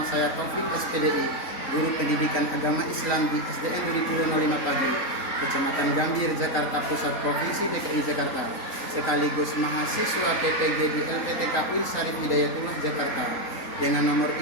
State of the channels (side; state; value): right; late; 3.9 ms